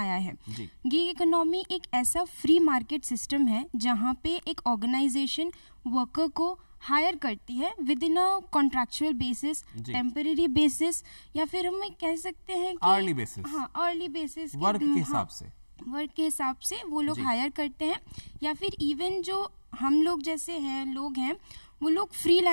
है। गिग इकोनॉमी एक ऐसा फ्री मार्केट सिस्टम है जहाँ पे एक ऑर्गेनाइजेशन वर्कर को हायर करती है with in a contractual basis, temporary basis, या फिर हम कह सकते हैं कि अर्ली बेसिस। हाँ, अर्ली बेसिस, वर्क के हिसाब से, वर्क के हिसाब से वो लोग हायर करते हैं। या फिर इवन जो हम लोग जैसे हैं लोग हैं, वो लोग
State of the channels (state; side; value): inverted; both; correlation -1.00